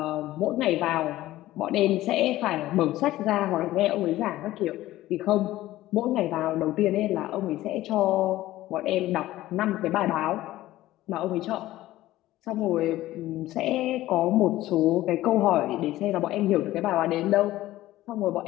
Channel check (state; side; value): quieter; right; 15.7 dB